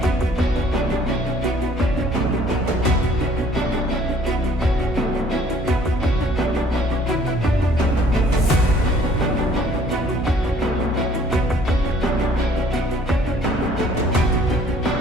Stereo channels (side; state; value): both; normal; correlation 0.58